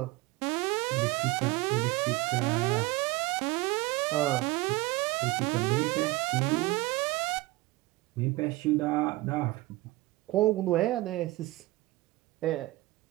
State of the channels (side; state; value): left; quieter; 20.2 dB